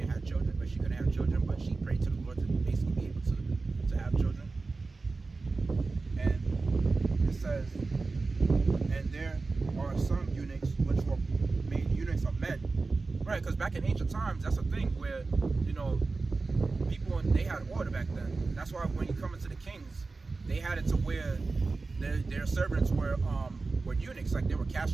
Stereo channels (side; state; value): left; quieter; 3.8 dB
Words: have children, but she couldn't have children, but she prayed to the Lord to basically be able to have children. And it says, and there are some eunuchs which were made eunuchs of men, right? Because back in ancient times, that's a thing where people, they had order back then. That's why when you come into the kings, they had it to where their servants were eunuchs, like they were